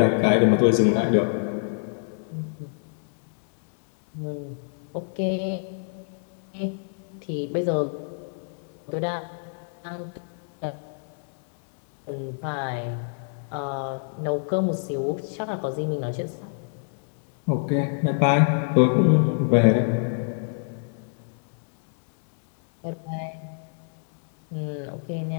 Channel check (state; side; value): silent; right; digital silence